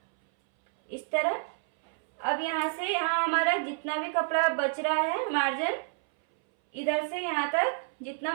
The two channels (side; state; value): left; silent; 59 dB below the other